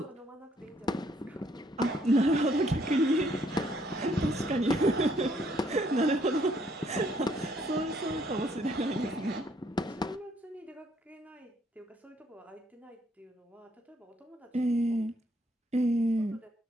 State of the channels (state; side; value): normal; both; correlation 0.68